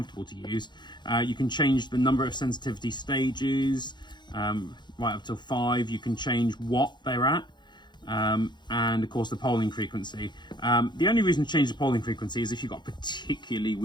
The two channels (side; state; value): right; late; 0.21 ms